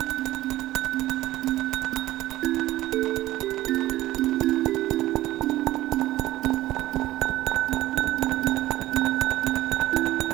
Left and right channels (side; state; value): left; quieter; 16.0 dB